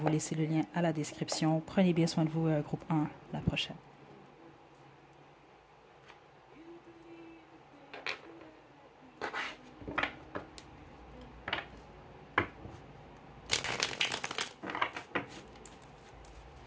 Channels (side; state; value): both; identical; correlation 1.00